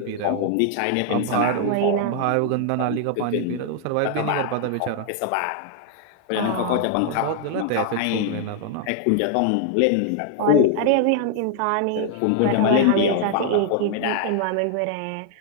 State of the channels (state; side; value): different; both; correlation 0.00